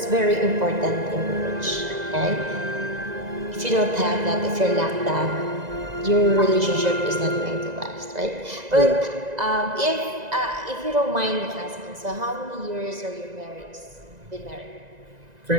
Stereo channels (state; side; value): late; left; 1.9 ms